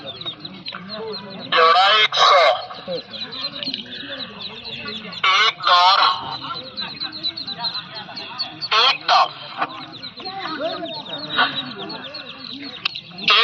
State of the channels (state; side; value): identical; both; correlation 1.00